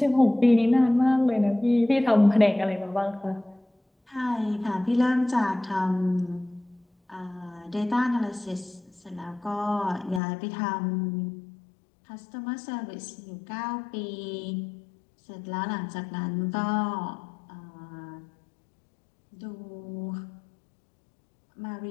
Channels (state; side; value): drops out; right; at 10.2 s